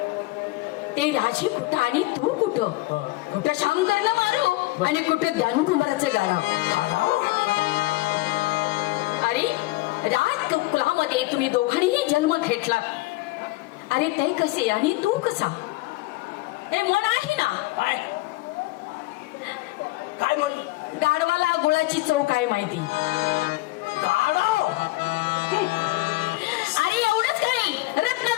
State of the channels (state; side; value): quieter; right; 20.0 dB